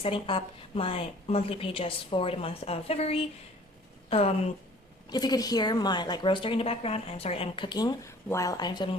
up my monthly pages for the month of February. If you could hear my roaster in the background, I'm sorry, I'm cooking while I'm filming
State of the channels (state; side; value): normal; both; correlation 0.51